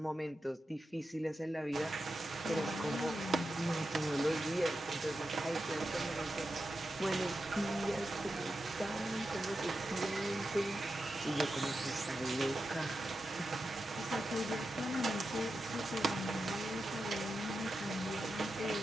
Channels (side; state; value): both; normal; correlation 0.89